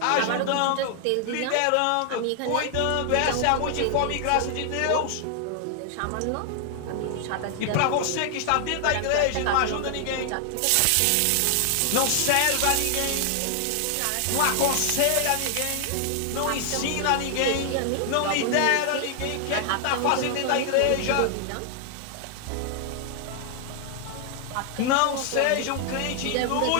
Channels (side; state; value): both; different; correlation 0.00